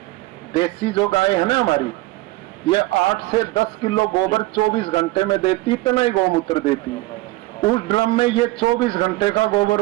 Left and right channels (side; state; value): left; quieter; 19.2 dB